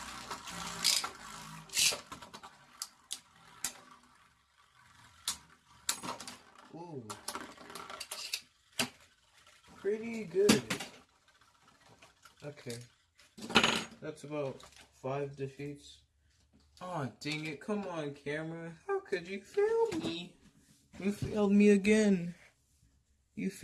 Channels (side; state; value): both; identical; correlation 1.00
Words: Ooh. Pretty good. Okay. That's about 5 defeats. Oh, dang it. Come on, camera. How could you fail me? You failed me again. You